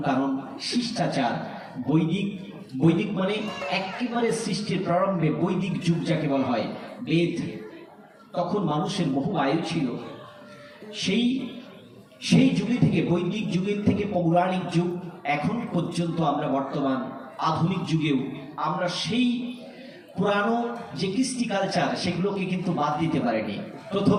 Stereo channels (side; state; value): both; identical; correlation 1.00